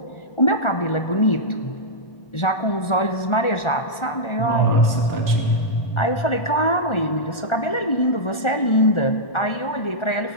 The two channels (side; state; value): right; late; 1.4 ms